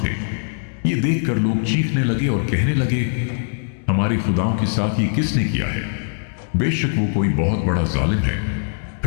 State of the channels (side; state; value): right; silent; 65 dB below the other